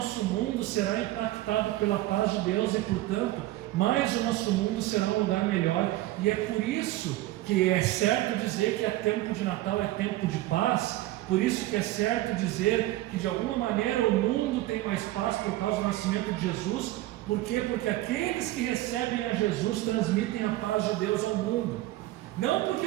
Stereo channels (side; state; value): left; quieter; 16.4 dB